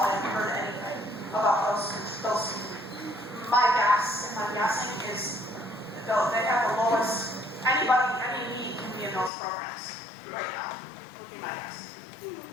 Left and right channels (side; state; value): right; drops out; at 9.3 s